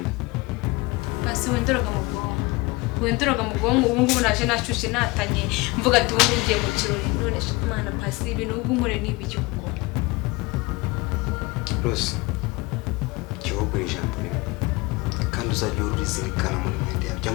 Basi wendoroga mu bwonko. wenduraga mu bwonko ubu ngubu naje nashushe natanye mvuga ati ubu ngiye mu kirori none Mana pasi ibintu ubu nkore n'ibiki kuko Rose igihugu ijambo rimwe kandi uzajya urizirikana muri mwende yawe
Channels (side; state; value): right; quieter; 23.7 dB